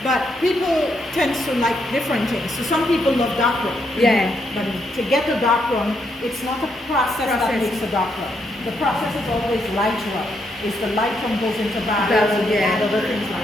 But people tend to like different things. So some people love dark rum. But to get a dark rum, it's not a process that makes a dark rum. The process is always light rum. It's the light rum goes into barrels and add other things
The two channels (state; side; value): normal; both; correlation 0.77